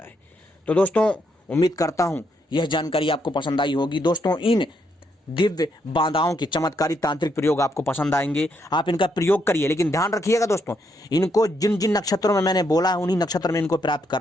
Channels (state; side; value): normal; both; correlation 0.76